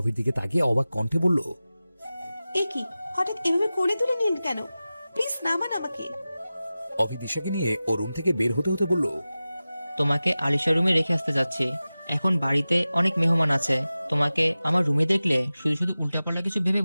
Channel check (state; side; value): inverted; both; correlation -0.96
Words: দিকে তাকিয়ে অবাক কণ্ঠে বলল, এ কি, হঠাৎ এভাবে কোলে তুলে নিলেন কেন? প্লিজ নামান আমাকে। অভি দিশাকে নিয়ে ও রুম থেকে বের হতে হতে বলল, তোমাকে আলিশা রুমে রেখে আসতে যাচ্ছি। এখন বাড়িতে অনেক মেহমান আছে, তোমাকে আমার রুমে দেখলে শুধু শুধু উল্টাপাল্টা কিছু ভেবে